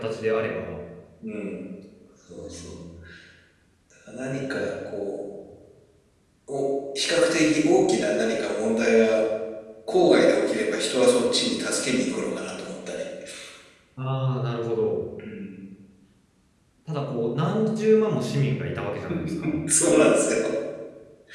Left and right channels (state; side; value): identical; both; correlation 1.00